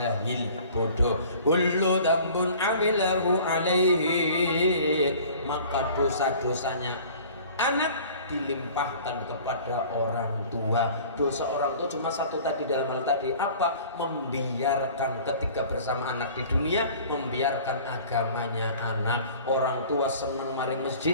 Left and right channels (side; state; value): both; inverted; correlation -0.47